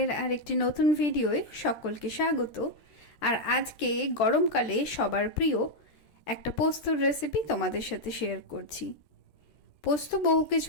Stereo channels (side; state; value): right; late; 13 ms